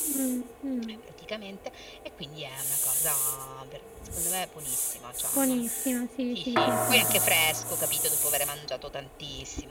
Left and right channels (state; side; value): identical; both; correlation 1.00